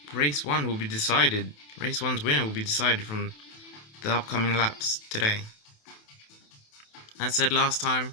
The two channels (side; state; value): right; late; 28 ms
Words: race 1 will be decided, race 1's winner will be decided from the upcoming laps today. As said last time,